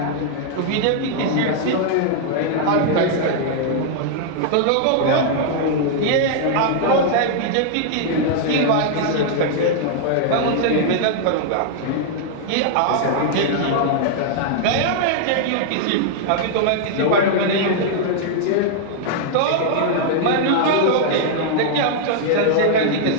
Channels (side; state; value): both; different; correlation -0.01